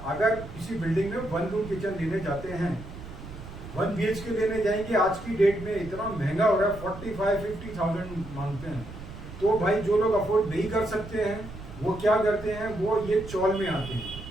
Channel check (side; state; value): right; noise; rumble, 13 dB below the sound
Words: अगर किसी बिल्डिंग में 1 रूम किचन लेने जाते हैं, 1 BHK लेने जाएंगे, आज की डेट में इतना महंगा हो रहा है, 45-50,000 मांगते हैं। तो भाई जो लोग अफोर्ड नहीं कर सकते हैं वो क्या करते हैं, वो ये चौल में आते हैं।